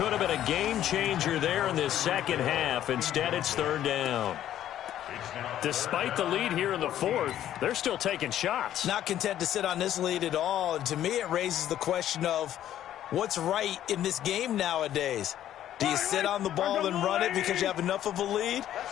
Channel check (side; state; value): right; quieter; 11.7 dB